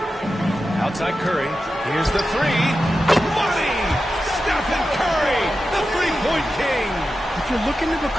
Outside Curry. Here's the 3. Money! Stephen Curry, the three-point king. If you're looking to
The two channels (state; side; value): normal; both; correlation 0.92